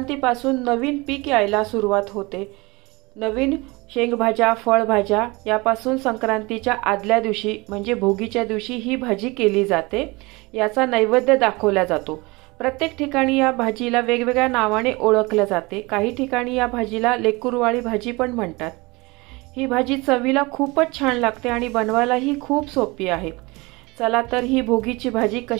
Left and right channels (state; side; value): quieter; left; 24.4 dB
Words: नवीन पीक यायला सुरुवात होते। नवीन शेंगभाज्या, फळभाज्या यापासून संक्रांतीच्या आदल्या दिवशी म्हणजे भोगीच्या दिवशी ही भाजी केली जाते। याचा नैवेद्य दाखवला जातो। प्रत्येक ठिकाणी या भाजीला वेगवेगळ्या नावाने ओळखले जाते। काही ठिकाणी या भाजीला लेकुरवाळी भाजी पण म्हणतात। ही भाजी चवीला खूपच छान लागते आणि बनवायलाही खूप सोपी आहे। चला तर ही भोगीची भाजी